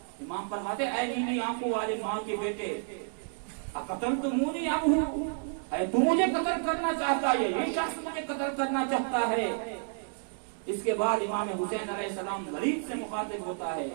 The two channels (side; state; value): left; silent; 57 dB below the other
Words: امام فرماتے اے نیلی آنکھوں والے ماں کے بیٹے، اقتلتمونی ام ہو، اے تو مجھے قتل کرنا چاہتا ہے، یہ شخص مجھے قتل کرنا چاہتا ہے۔ اس کے بعد امام حسین علیہ السلام ولید سے مخاطب ہوتا ہے